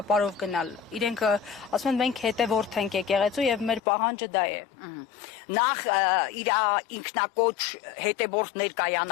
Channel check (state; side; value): drops out; right; at 3.8 s